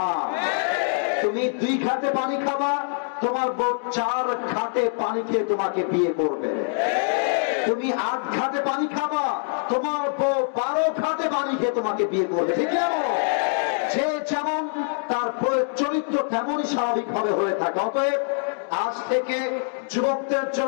তুমি 2 ঘাটে পানি খাবা, তোমার বউ 4 ঘাটে পানি খেয়ে তোমাকে বিয়ে করবে। তুমি 8 ঘাটে পানি খাবা, তোমার বউ 12 ঘাটে পানি খেয়ে তোমাকে বিয়ে করবে। ঠিক আছে, যে যেমন তার চরিত্র তেমনই স্বাভাবিক ভাবে হয়ে থাকে। অতএব আজ থেকে যুবকদের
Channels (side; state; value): right; silent; 57 dB below the other